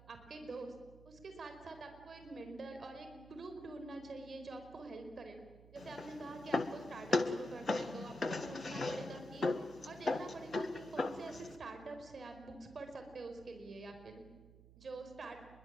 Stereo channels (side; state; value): right; noise; hum, 19 dB below the sound